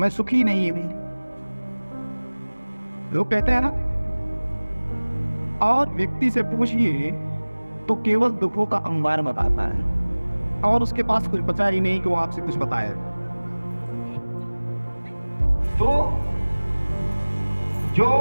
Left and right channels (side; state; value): both; inverted; correlation -1.00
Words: सुखी नहीं हूं, लोग कहते हैं ना। और व्यक्ति से पूछिए तो केवल दुखों का अंबार बताता है और उसके पास कुछ बचा ही नहीं कि वो आपसे कुछ बताए। तो जो